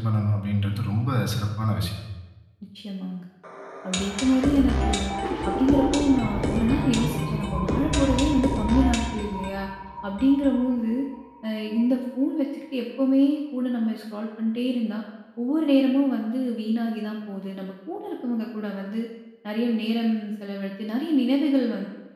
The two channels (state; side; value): identical; both; correlation 1.00